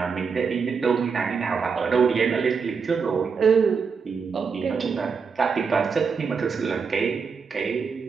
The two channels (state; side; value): quieter; left; 5.6 dB